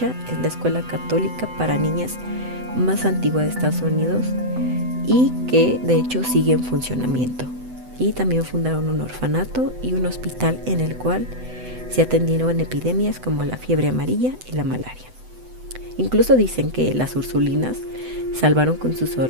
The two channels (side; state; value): left; late; 7.9 ms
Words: es la escuela católica para niñas más antigua de Estados Unidos y que de hecho sigue en funcionamiento. Y también fundaron un orfanato y un hospital en el cual se atendieron epidemias como la fiebre amarilla y la malaria. Incluso dicen que las ursulinas salvaron con sus